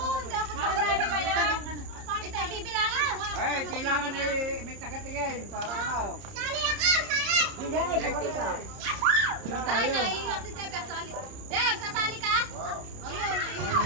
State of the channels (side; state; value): left; late; 30 ms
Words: sasali kaya. Ito, bibilangin ko nga. Eh, kailangan may tagatingin para ano. Sali ako! Sali! Hindi, kumali ka. Ay, naiilang si Jeb. Sasali. Jeb, sasali ka? Oh, yun,